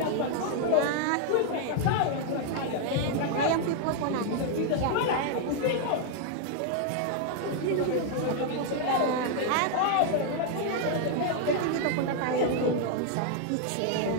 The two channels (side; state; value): both; different; correlation 0.00